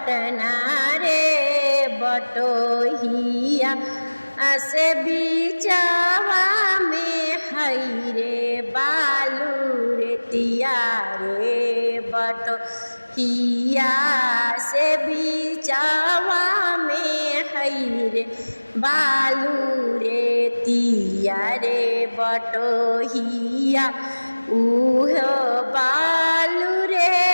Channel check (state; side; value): inverted; both; correlation -1.00